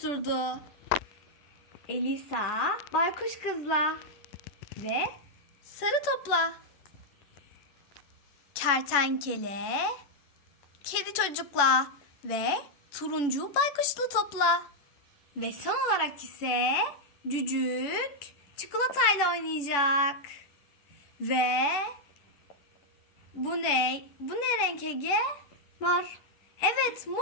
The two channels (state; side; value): late; right; 10 ms